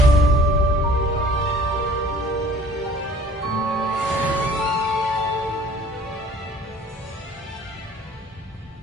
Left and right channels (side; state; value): both; normal; correlation 0.50